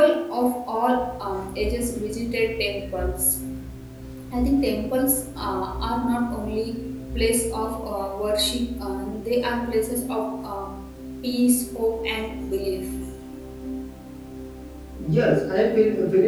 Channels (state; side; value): identical; both; correlation 1.00